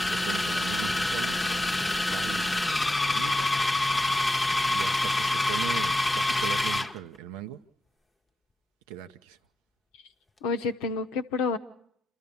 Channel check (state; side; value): normal; both; correlation 0.87